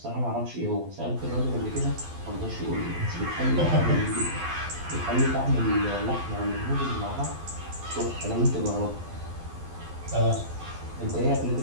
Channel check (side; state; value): left; late; 12 ms